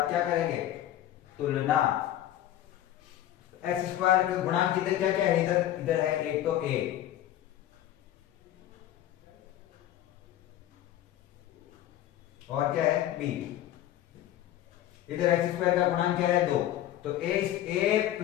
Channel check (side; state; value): right; quieter; 12.6 dB